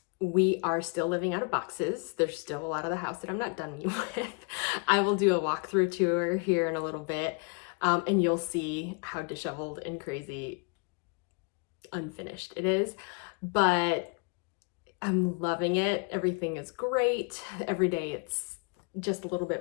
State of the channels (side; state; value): right; quieter; 35.3 dB